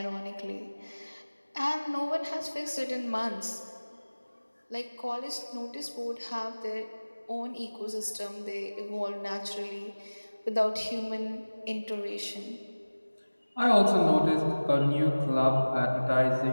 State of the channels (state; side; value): inverted; both; correlation -1.00